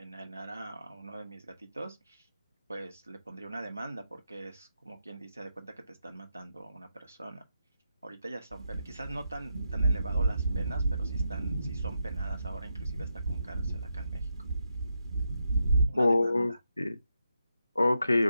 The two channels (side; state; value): both; inverted; correlation -0.84